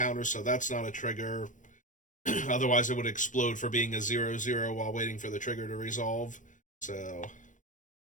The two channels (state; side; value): late; right; 0.37 ms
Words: so that's not a trigger. Otherwise, it would explode for being a 0/0 while waiting for the trigger to resolve. So